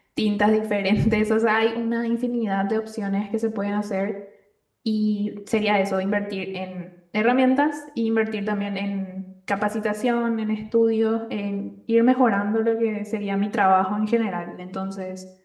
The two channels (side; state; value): both; identical; correlation 1.00